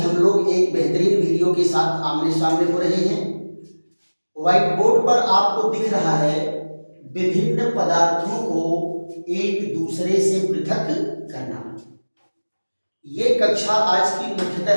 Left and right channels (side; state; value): both; inverted; correlation -1.00